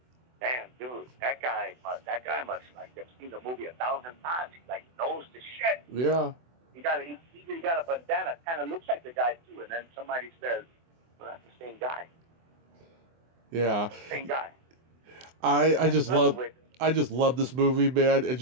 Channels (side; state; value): left; late; 24 ms